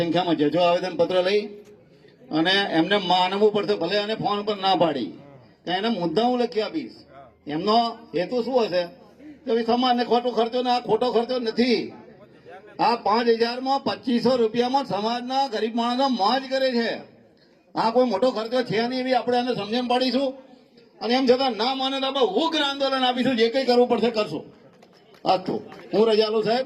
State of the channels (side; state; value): both; identical; correlation 1.00